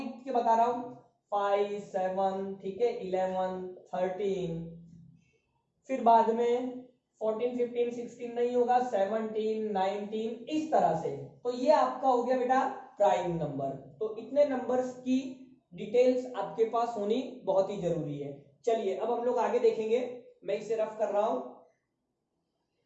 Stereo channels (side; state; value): both; identical; correlation 1.00